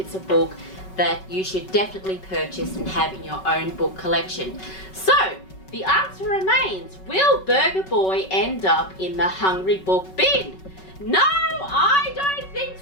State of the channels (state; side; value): late; right; 5.3 ms